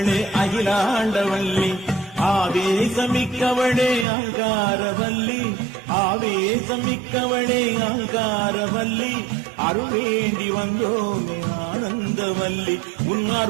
அகிலாண்டவல்லி ஆவேசமிக்கவளே அங்காரவல்லி ஆவேசமிக்கவளே அங்காரவல்லி அருள் வேண்டி வந்தோமே ஆனந்தவல்லி உன்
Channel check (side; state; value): left; drops out; at 4.0 s